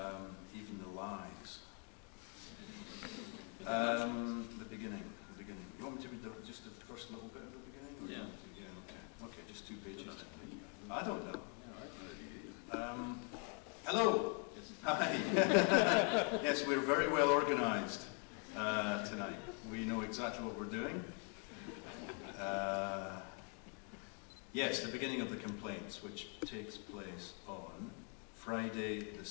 Even the lies. The beginning. You want me to read just the first little bit of the beginning? Or Yeah. Yeah, okay. Okay, just 2 pages. I don't know. Hello. Hi. Yes, we're very well organised tonight. We know exactly what we're doing. Yes, the beginning of the complaints, which takes place on Friday, the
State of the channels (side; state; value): right; quieter; 39.9 dB